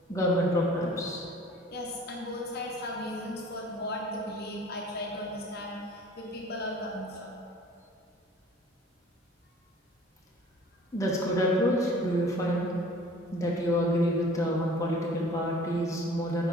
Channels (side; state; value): both; normal; correlation 0.49